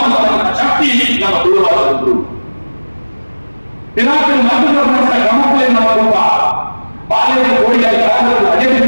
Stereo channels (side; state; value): both; inverted; correlation -1.00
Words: ಶಕ್ತಿ ನಮ್ಮ ತುಳುವಾದದ್ದು ಪಿನಾಕಲ್ ಮಧ್ಯಪ್ರದೇಶ ಕ್ರಮಕ್ಕೆ ನಮ್ಮ ಕುಟುಂಬ ಬಾಲ್ಯದ ಕೋಡಿಯಾಗಿ ಅದೇ